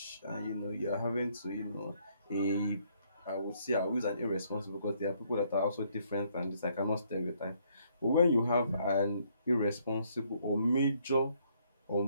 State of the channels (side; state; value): both; inverted; correlation -0.69